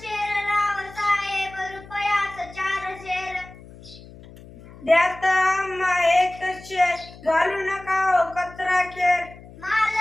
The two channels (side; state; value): left; noise; hum, 19 dB below the sound